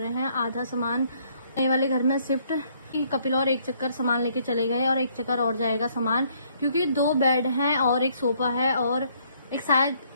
हैं आधा सामान नए वाले घर में शिफ्ट। कपिल और एक चक्कर सामान लेके चले गए और एक चक्कर और जाएगा सामान, क्योंकि 2 बेड हैं और एक सोफा है और एक शायद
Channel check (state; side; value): inverted; both; correlation -0.66